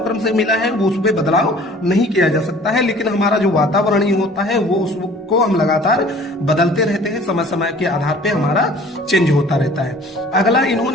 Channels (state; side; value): normal; both; correlation 0.50